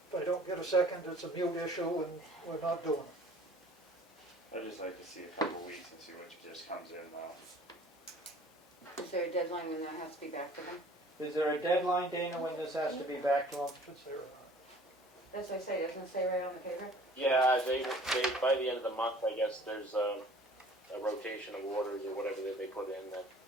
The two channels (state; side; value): normal; both; correlation 0.50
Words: If I don't get a second, it's a mute issue and we're not doing it. I'd just like to see a couple weeks and see what just comes in now. Is there a deadline when that has to be back to them? Is there a deadline, Dana, when this has to be back to them? Should say or not. That's what I say, doesn't it say right on the paper? Yeah, they by the end of the month, I guess there's a rotation of orders or whatever that they put in that